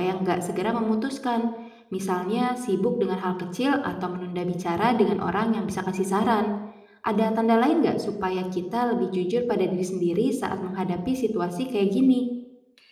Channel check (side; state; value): both; identical; correlation 1.00